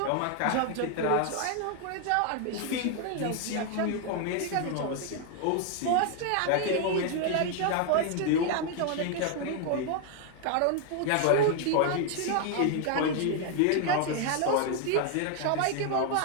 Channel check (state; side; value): different; both; correlation 0.00